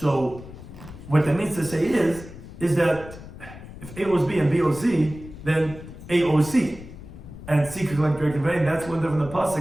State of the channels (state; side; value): noise; left; rumble, 15 dB below the sound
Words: what that means to say is that if A owes B and B owes C, then A owes C. And C could collect direct conveying. That's one from the